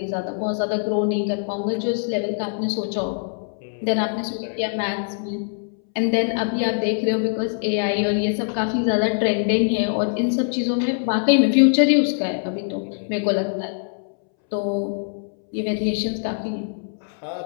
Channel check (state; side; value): silent; right; 63 dB below the other